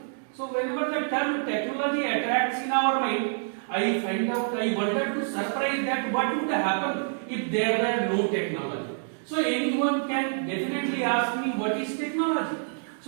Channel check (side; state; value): left; silent; digital silence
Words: So whenever the term technology attracts in our mind, I wanted to surprise that what would happen if there were no technology. So anyone can definitely ask me, what is technology?